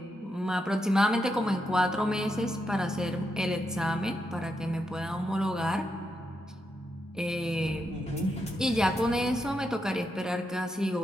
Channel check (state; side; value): normal; both; correlation 0.83